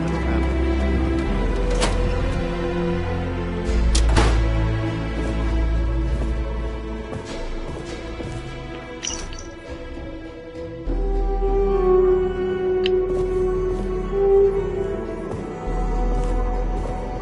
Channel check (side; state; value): both; identical; correlation 1.00